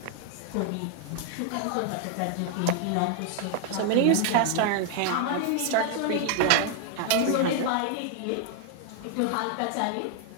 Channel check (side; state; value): both; different; correlation 0.00